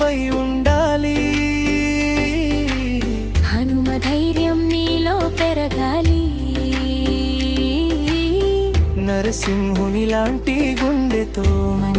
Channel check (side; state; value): both; identical; correlation 1.00